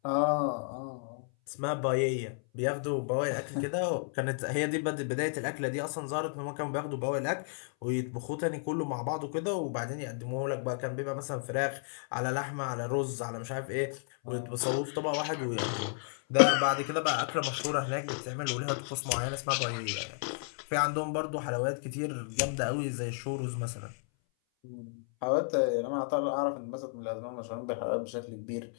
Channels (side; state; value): right; silent; 56 dB below the other